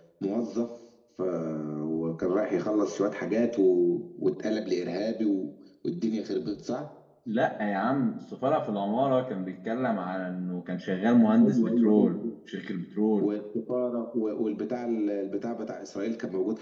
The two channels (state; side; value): identical; both; correlation 1.00